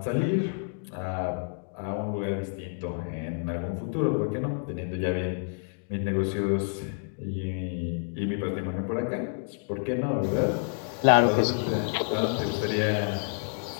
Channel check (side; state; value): right; silent; digital silence